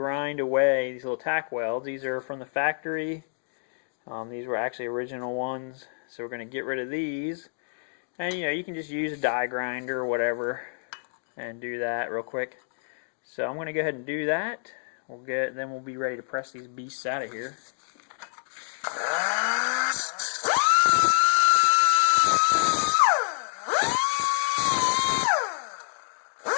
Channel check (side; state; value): right; silent; digital silence